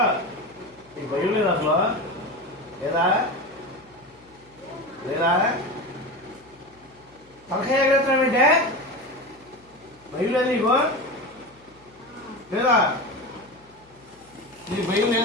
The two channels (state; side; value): noise; left; hum, 29 dB below the sound